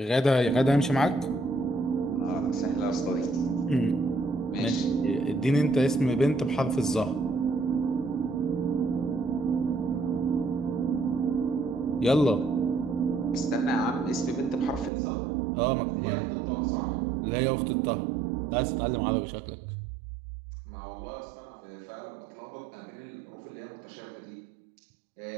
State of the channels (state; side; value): drops out; left; at 14.9 s